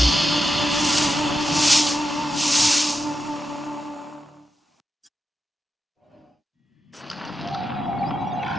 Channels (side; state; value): both; normal; correlation 0.88